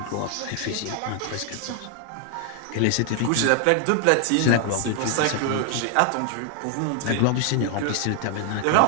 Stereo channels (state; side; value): different; both; correlation 0.00